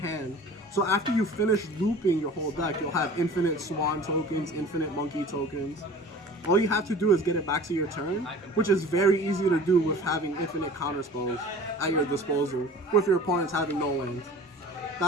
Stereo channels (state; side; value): normal; both; correlation 0.42